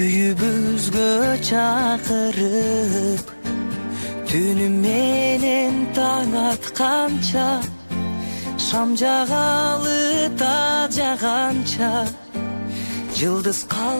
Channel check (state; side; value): inverted; both; correlation -1.00